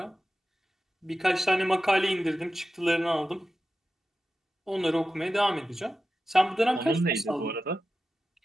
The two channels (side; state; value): both; normal; correlation 0.93